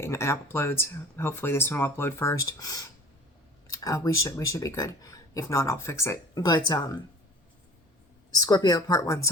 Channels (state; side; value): normal; both; correlation 0.43